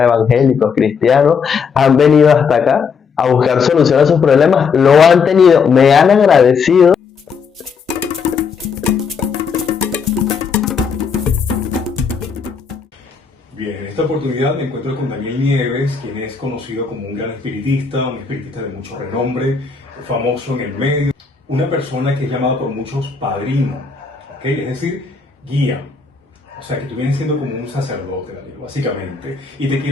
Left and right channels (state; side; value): quieter; right; 5.7 dB